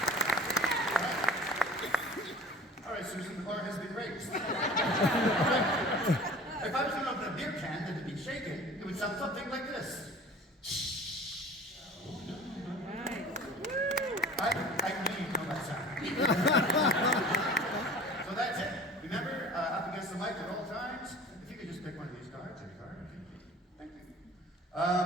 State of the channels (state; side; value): normal; both; correlation 0.43